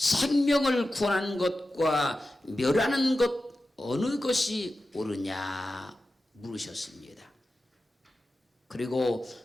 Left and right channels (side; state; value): both; normal; correlation 0.93